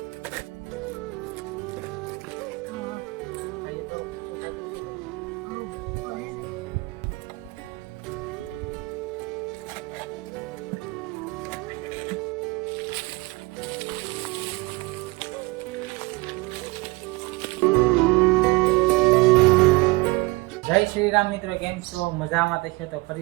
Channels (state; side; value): quieter; left; 23.2 dB